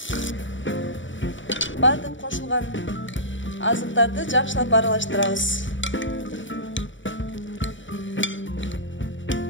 Бардык кошулган азыктарды жакшылап аралаштырабыз.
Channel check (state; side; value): late; right; 0.55 ms